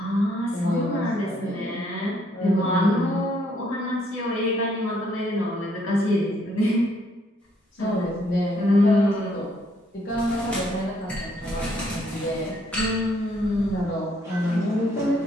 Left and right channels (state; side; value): normal; both; correlation 0.69